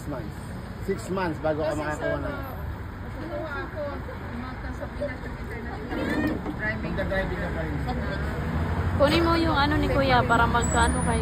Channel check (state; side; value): identical; both; correlation 1.00